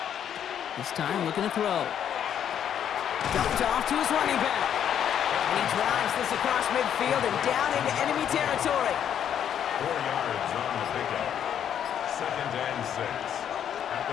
This time looking to throw. Dumped off to his running back. And he drives this across midfield and down into enemy territory. 4 yards on the pickup. 2nd and 6.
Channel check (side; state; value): right; quieter; 9.3 dB